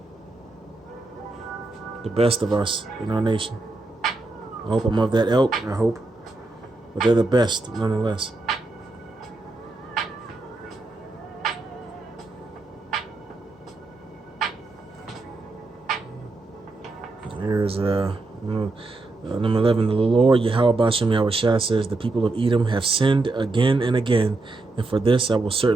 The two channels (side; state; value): left; quieter; 3.2 dB